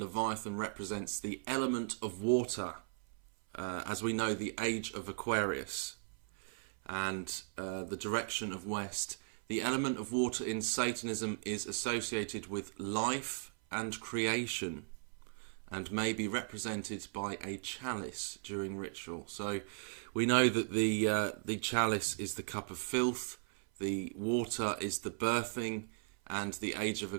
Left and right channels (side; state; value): left; silent; 53 dB below the other